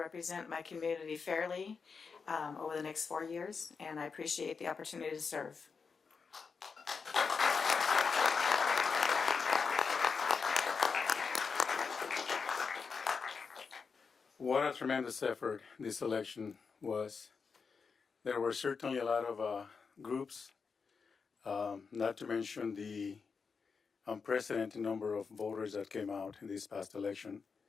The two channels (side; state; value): right; quieter; 5.3 dB